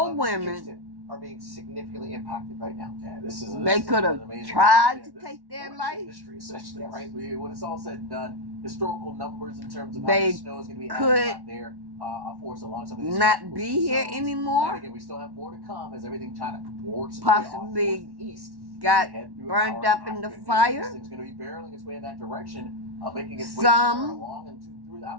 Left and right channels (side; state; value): left; late; 1.1 ms